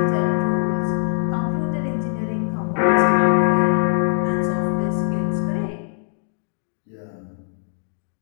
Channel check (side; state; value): right; silent; digital silence